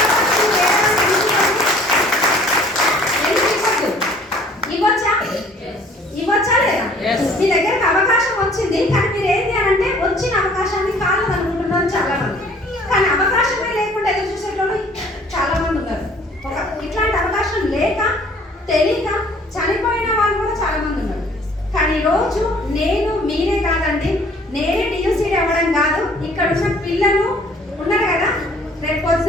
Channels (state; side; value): normal; both; correlation 0.55